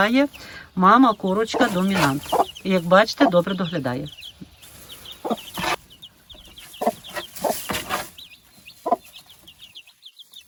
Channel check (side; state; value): both; identical; correlation 1.00